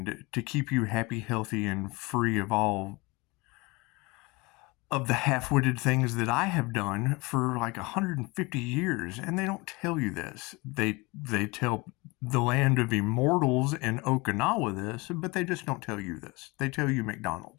to keep you happy, healthy, and free of all of the half-witted things that I have done for like 150 years, and they don't tell you this. They tell the land of immortals in Okinawa this, but they just don't tell you this. They tell you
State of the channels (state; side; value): quieter; right; 24.9 dB